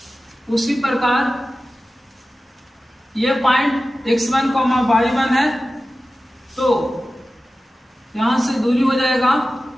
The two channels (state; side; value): normal; both; correlation 0.95